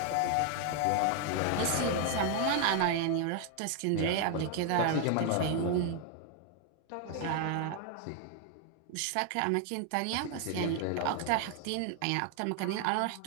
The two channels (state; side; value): different; both; correlation 0.01